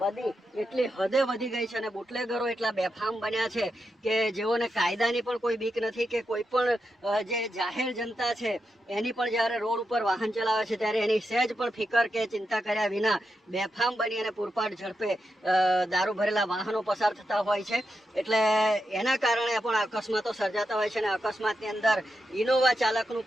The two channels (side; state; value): both; normal; correlation 0.87